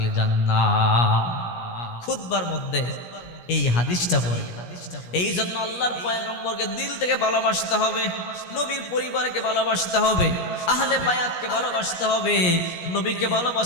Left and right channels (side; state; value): right; late; 17 ms